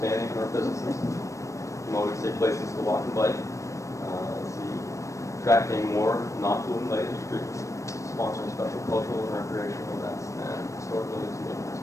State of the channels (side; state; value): right; late; 0.15 ms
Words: our businesses. Promoting safe places to walk and bike. Let's see. Attracting more non-polluting light industry. Sponsoring special cultural and recreational events and historic buildings and neighborhoods.